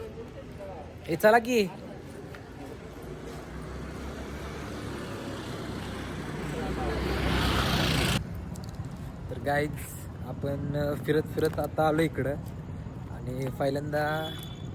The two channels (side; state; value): both; identical; correlation 1.00